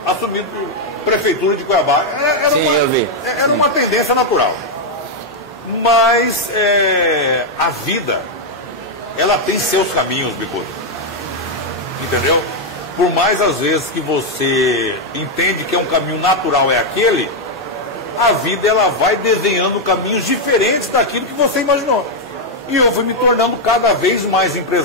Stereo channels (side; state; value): both; normal; correlation 0.00